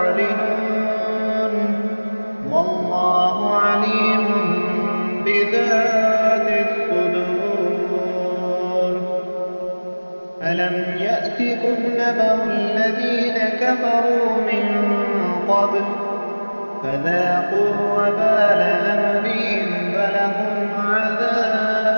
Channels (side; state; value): both; inverted; correlation -1.00